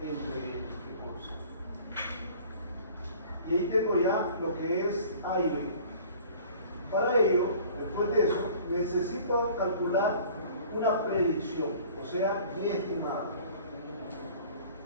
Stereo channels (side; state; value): both; inverted; correlation -0.48